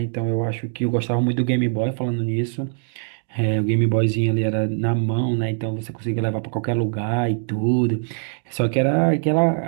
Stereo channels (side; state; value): left; silent; digital silence